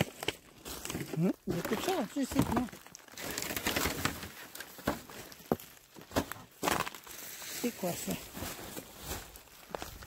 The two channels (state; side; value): identical; both; correlation 1.00